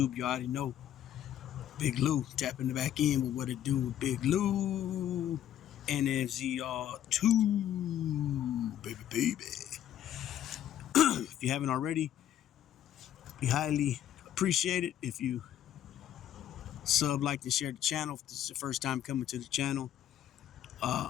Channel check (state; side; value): quieter; right; 11.2 dB